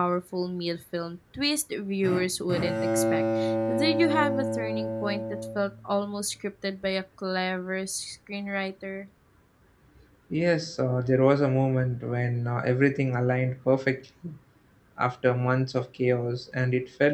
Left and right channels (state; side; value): identical; both; correlation 1.00